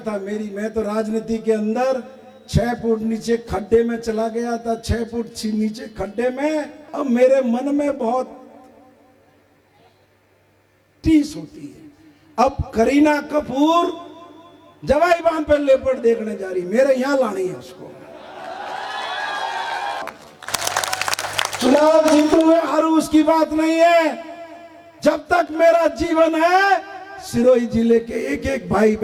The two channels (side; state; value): both; identical; correlation 1.00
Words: मैं तो राजनीति के अंदर 6 फुट नीचे खड्डे में चला गया था, 6 फुट नीचे खड्डे में। अब मेरे मन में बहुत टीस होती है। अब करीना कपूर जवाई बांध पर लेपर्ड देखने जा रही, मेरे यहां लानी है उसको। चुनाव जीतू या हारू उसकी बात नहीं है। जब तक मेरा जीवन है सिरोही जिले के एक एक भाई